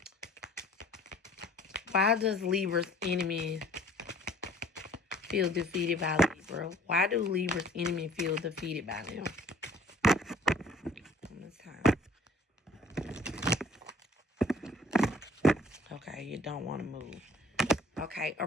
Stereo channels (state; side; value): normal; both; correlation 0.53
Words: Why does Libra's enemy feel defeated by Libra? Why do Libra's enemy feel defeated by them? This time. Okay, you don't want to move. Okay,